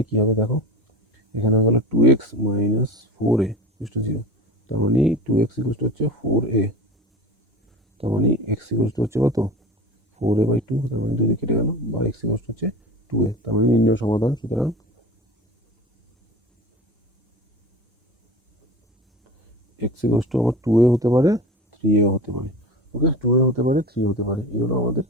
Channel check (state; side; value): normal; both; correlation 0.33